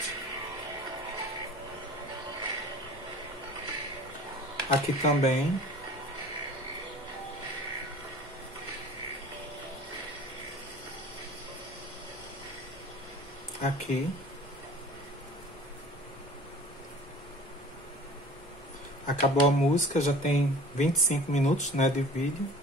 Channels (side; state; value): both; normal; correlation 0.45